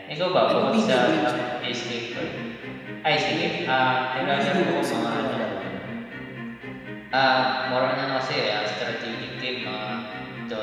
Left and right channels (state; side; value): identical; both; correlation 1.00